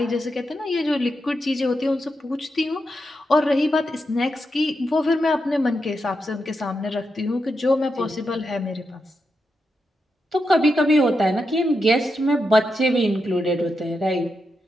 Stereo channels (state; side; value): normal; both; correlation 0.86